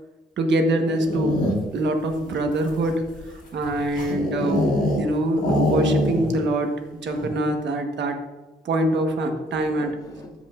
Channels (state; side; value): normal; both; correlation 0.63